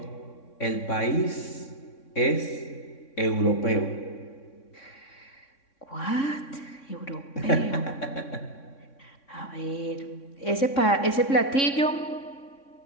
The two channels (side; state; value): right; late; 3.6 ms